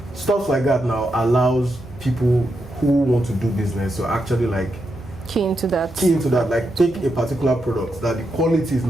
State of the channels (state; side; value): normal; both; correlation 0.84